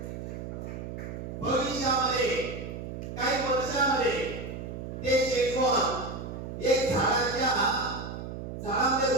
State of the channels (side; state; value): right; noise; hum, 7 dB below the sound